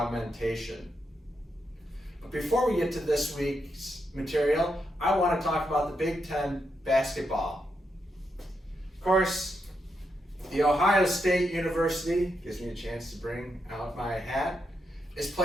But before we get to this week's material, I want to talk about the Big Ten basketball. Of course, the Ohio State University, gives me a chance to bring out my hat, is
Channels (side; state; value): both; normal; correlation 0.83